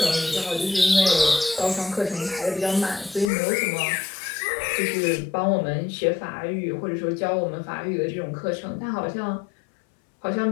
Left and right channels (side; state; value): right; drops out; at 3.3 s